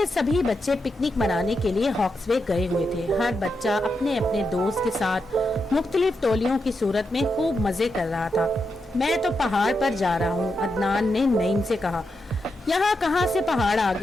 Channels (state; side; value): normal; both; correlation 0.85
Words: सभी बच्चे पिकनिक मनाने के लिए हॉक्सवे गए हुए थे। हर बच्चा अपने अपने दोस्त के साथ मुख्तलिफ टोलियों की सूरत में खूब मजे कर रहा था। मैं तो पहाड़ पर जा रहा हूँ, अदनान ने नईम से कहा। यहाँ कहाँ से पहाड़ आ